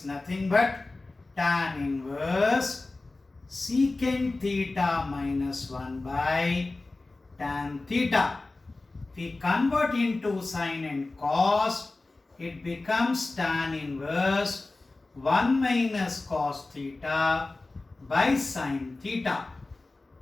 nothing but tan inverse secant theta minus 1 by tan theta. If we convert into sine and cos, it becomes tan inverse 1 minus cos theta by sine theta.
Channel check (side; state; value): right; quieter; 3.2 dB